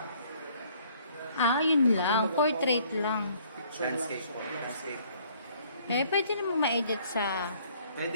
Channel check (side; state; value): both; inverted; correlation -0.61